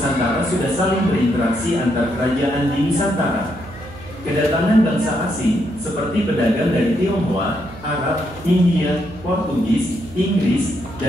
sudah saling berinteraksi antar kerajaan di Nusantara. Kedatangan bangsa asing, seperti pedagang dari Tionghoa, Arab, India, Portugis, Inggris,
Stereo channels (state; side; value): noise; right; hum, 17 dB below the sound